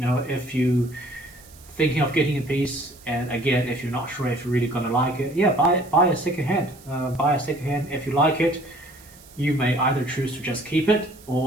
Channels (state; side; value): noise; right; hiss, 23 dB below the sound